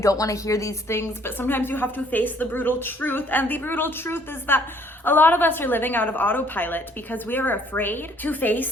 want to hear these things, but sometimes you have to face the brutal truth. And the brutal truth is that a lot of us are living out of autopilot because we are afraid to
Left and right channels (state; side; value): normal; both; correlation 0.61